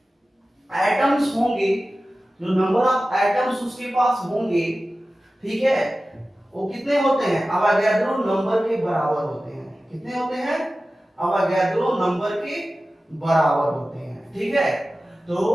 एटम्स होंगे जो नंबर ऑफ एटम्स उसके पास होंगे, ठीक है, वो कितने होते हैं, अवोगाड्रो नंबर के बराबर होते हैं। कितने होते हैं, अवोगाड्रो नंबर के बराबर होते हैं, ठीक है। तो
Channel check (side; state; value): both; normal; correlation 0.95